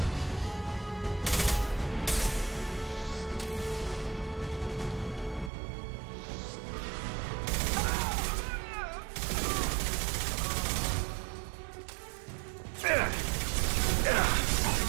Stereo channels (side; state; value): left; drops out; at 5.5 s